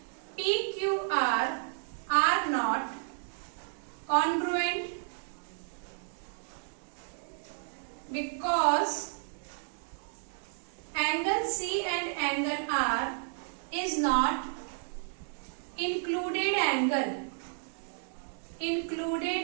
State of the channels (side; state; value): left; silent; digital silence